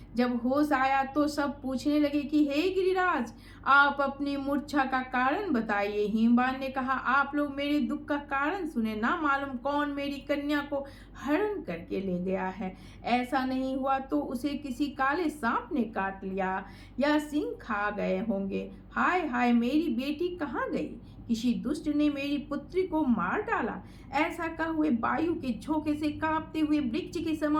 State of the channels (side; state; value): both; identical; correlation 1.00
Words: जब होश आया तो सब पूछने लगे कि हे गिरिराज, आप अपनी मूर्छा का कारण बताइए। हिमवान ने कहा, आप लोग मेरे दुख का कारण सुने। ना मालूम कौन मेरी कन्या को हरण करके ले गया है। ऐसा नहीं हुआ तो उसे किसी काले सांप ने काट लिया या सिंह खा गए होंगे। हाय हाय, मेरी बेटी कहाँ गई? किसी दुष्ट ने मेरी पुत्री को मार डाला। ऐसा कह हुए वायु के झोंके से कांपते हुए वृक्ष के